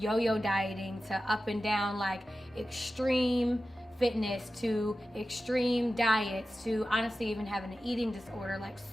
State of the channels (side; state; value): both; normal; correlation 0.94